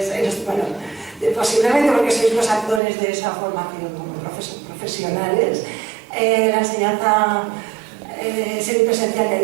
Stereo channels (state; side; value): drops out; left; at 2.8 s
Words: posiblemente porque sois los actores de esa formación como profesionales. La enseñanza semipresencial y a